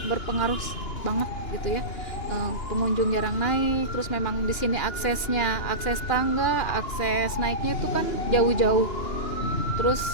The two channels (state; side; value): late; right; 2.9 ms